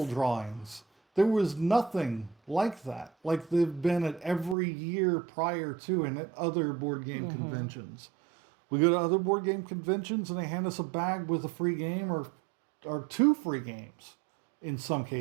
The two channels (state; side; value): drops out; left; at 4.5 s